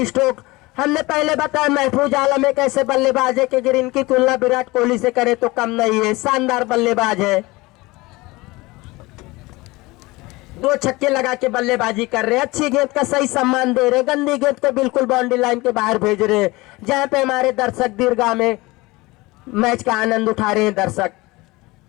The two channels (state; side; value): quieter; right; 21.9 dB